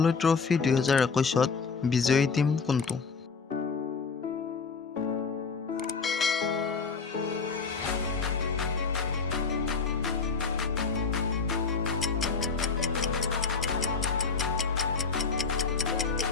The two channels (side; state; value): right; quieter; 5.0 dB